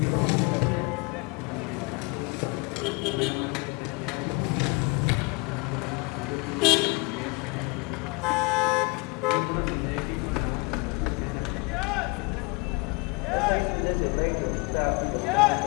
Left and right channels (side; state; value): right; quieter; 29.1 dB